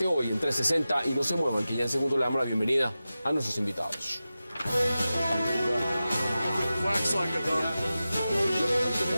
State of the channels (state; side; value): inverted; both; correlation -0.94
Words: hoy en 360 y no se muevan, que ya en segundo le damos la bienvenida a nuestros invitados.